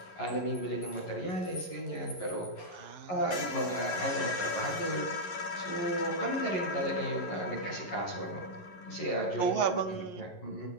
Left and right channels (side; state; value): right; late; 11 ms